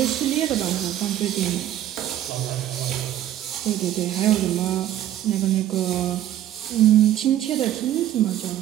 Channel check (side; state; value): left; quieter; 12.2 dB